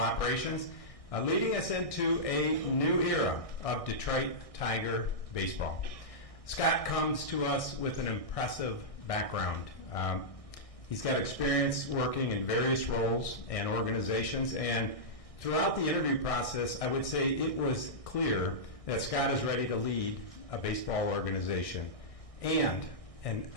leading us into a new era of Detroit Tiger baseball. Scott comes to us with an impressive background. He's got experience working in various roles and organizations, and throughout the interview process, I would say it was clear that Scott is ready to lead a baseball organization and an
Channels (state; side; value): late; right; 1.6 ms